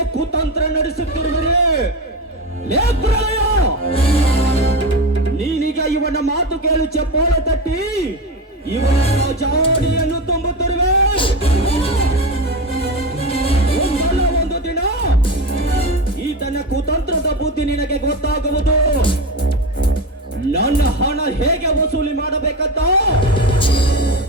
ಕುತಂತ್ರ ನಡೆಸುತ್ತಿರುವಿರಿ. ಲೇಪ್ರಾಯ, ನೀನೀಗ ಇವನ ಮಾತು ಕೇಳಿ ಚಪ್ಪಾಳೆ ತಟ್ಟಿ ಇವನ ಜಾಡಿಯನ್ನು ತುಂಬುತ್ತಿರುವೆ. ಒಂದಲ್ಲ ಒಂದು ದಿನ ಈತನ ಕುತಂತ್ರದ ಬುದ್ಧಿ ನಿನಗೆ ಗೊತ್ತಾಗುವುದು. ನನ್ನ ಹಣ ಹೇಗೆ ವಸೂಲಿ ಮಾಡಬೇಕಂತ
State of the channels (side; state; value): both; normal; correlation 0.21